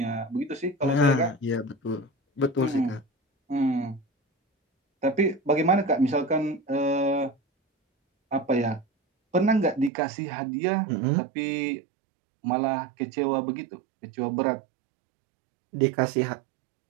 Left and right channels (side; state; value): left; drops out; at 9.9 s